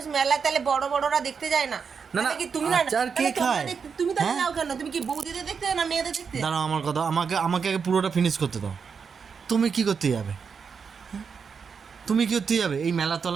মেলায় তাহলে বড়রা দেখতে যায় না? না, কি তুমি না আচার কে খায়? তুমি তাহলে হ্যাঁ? যাও কেন? তুমি কি বৌদিদের দেখতে না মেয়েদের দেখতে? দাঁড়াও, আমার কথা আমাকে আগে পুরোটা ফিনিশ করতে দাও। তুমি কি করতে যাবে? তুমি কি করতে যাবে এই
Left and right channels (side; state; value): left; quieter; 6.0 dB